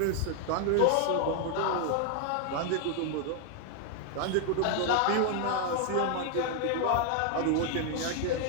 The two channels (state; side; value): different; both; correlation 0.00